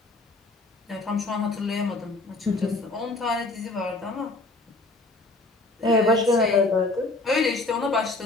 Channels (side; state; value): right; quieter; 3.0 dB